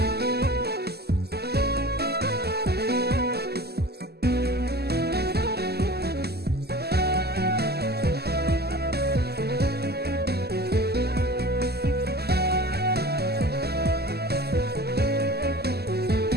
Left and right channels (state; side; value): late; left; 0.46 ms